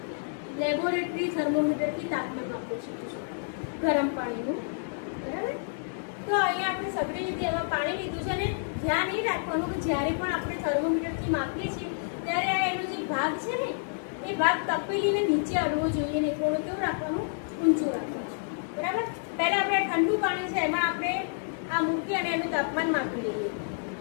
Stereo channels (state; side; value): silent; right; digital silence